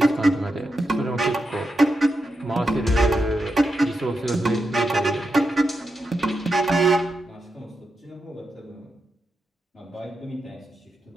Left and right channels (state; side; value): normal; both; correlation 0.87